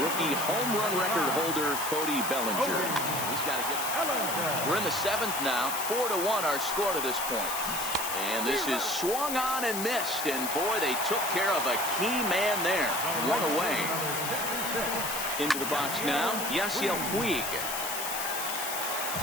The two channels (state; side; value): noise; left; hiss, 4 dB below the sound